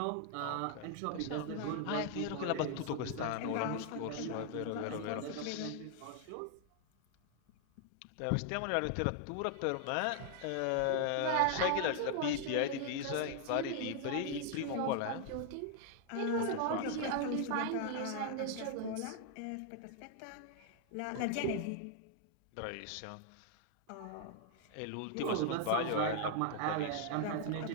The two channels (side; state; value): both; different; correlation 0.00